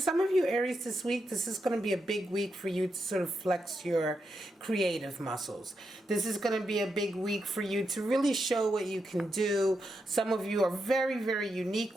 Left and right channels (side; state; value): both; normal; correlation 0.84